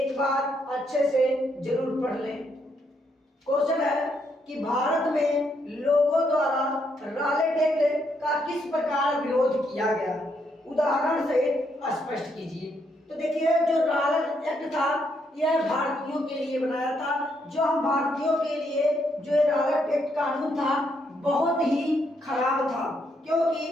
बार अच्छे से जरूर पढ़ लें। क्वेश्चन है कि भारत में लोगों द्वारा रॉलेट एक्ट का किस प्रकार विरोध किया गया, उदाहरण से स्पष्ट कीजिए। तो देखिए जो रॉलेट एक्ट था यह भारतीयों के लिए बनाया था। जो हम भारतीयों के लिए जो रॉलेट एक्ट कानून था बहुत ही खराब था, क्योंकि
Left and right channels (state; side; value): normal; both; correlation 0.75